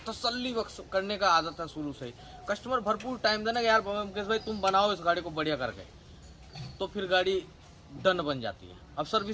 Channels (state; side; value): identical; both; correlation 1.00